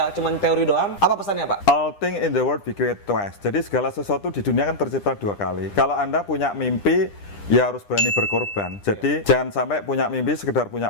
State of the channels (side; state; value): right; late; 9.9 ms